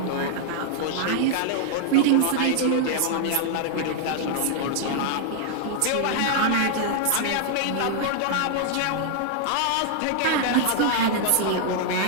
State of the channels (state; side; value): different; both; correlation 0.00